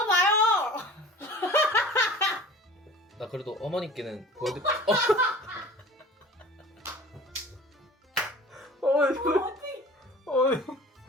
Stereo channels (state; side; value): normal; both; correlation 0.42